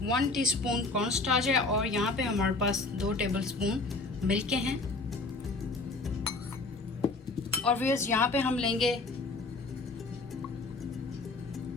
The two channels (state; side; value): quieter; right; 3.4 dB